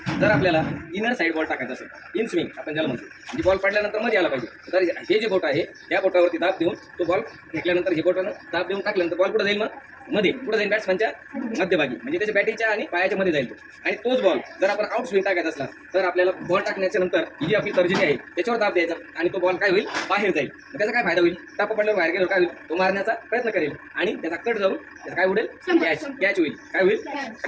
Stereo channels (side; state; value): both; identical; correlation 1.00